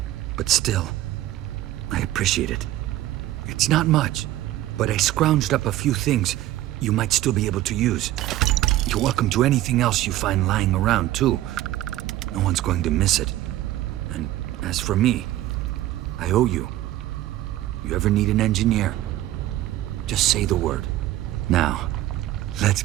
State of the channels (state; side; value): quieter; left; 14.7 dB